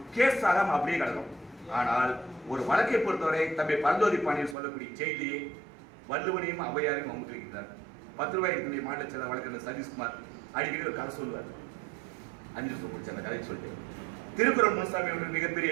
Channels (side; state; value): left; drops out; at 4.5 s